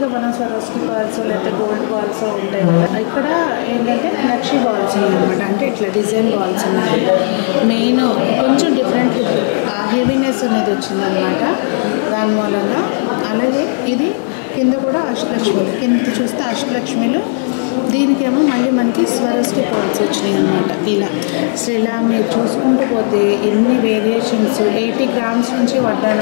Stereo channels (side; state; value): right; silent; digital silence